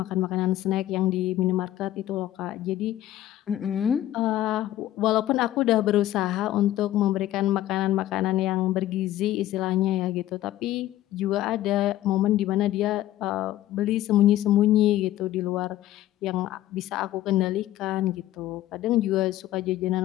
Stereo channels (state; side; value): quieter; right; 14.0 dB